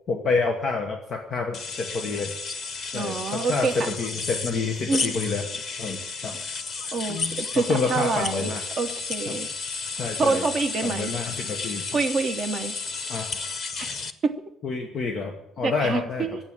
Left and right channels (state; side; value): normal; both; correlation 0.68